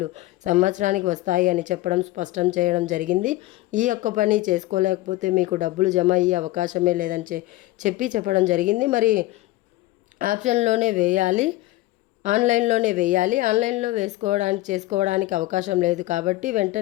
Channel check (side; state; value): right; quieter; 17.5 dB